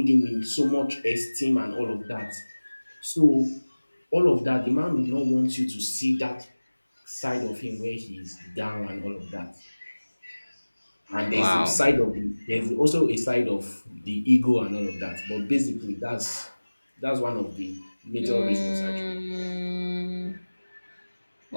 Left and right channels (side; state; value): both; inverted; correlation -1.00